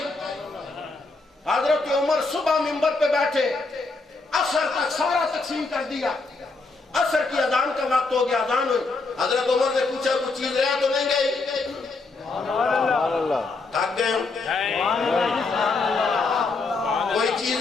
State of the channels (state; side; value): quieter; right; 3.8 dB